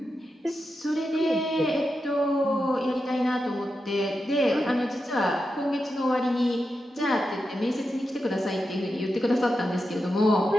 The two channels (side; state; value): both; normal; correlation 0.88